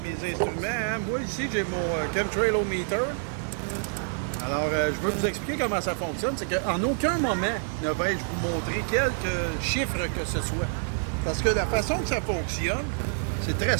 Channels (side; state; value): left; silent; digital silence